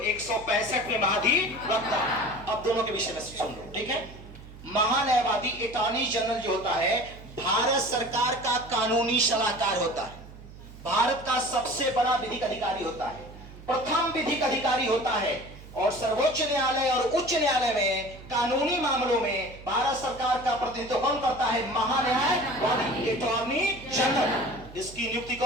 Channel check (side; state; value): right; noise; hum, 17 dB below the sound